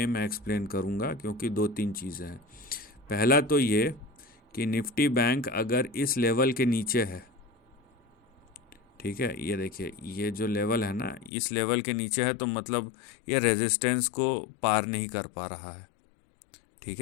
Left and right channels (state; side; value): drops out; right; at 11.3 s